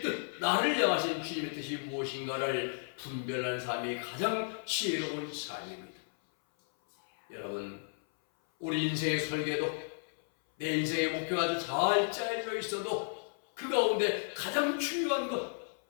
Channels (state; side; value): silent; right; 55 dB below the other